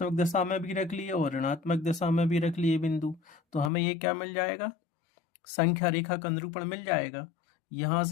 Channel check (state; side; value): drops out; right; at 3.7 s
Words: दिशा में भी रख लिए और ऋणात्मक दिशा में भी रख लिए बिंदु, तो हमें ये क्या मिल जाएगा, संख्या रेखा का निरूपण मिल जाएगा। यहां